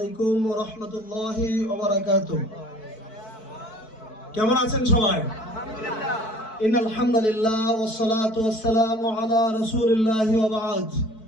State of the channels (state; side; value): late; right; 4.6 ms